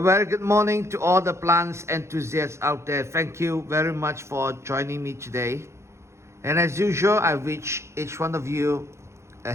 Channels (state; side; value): late; left; 0.13 ms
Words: good morning to all the plants enthusiasts out there. Thank you very much for joining me today. And as usual, I wish each one of you a